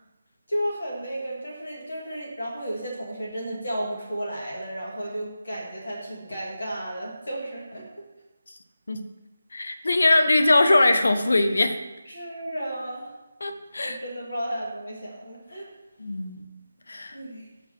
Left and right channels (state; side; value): inverted; both; correlation -0.94